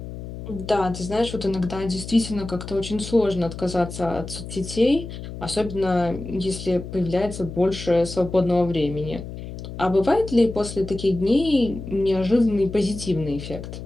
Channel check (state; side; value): noise; left; hum, 10 dB below the sound